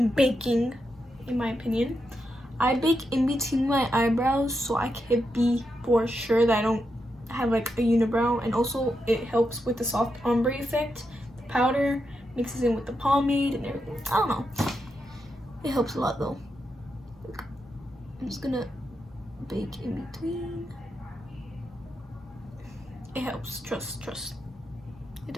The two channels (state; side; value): normal; both; correlation 0.85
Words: baking, in my opinion. I bake in between my eyebrows so I can be for sure that I don't have like a unibrow, and also it helps with the soft ombre effect. The powder mixes in with the pomade and everything. I don't know. It helps a lot though. I'm just gonna bake in between. It helps. Trust. It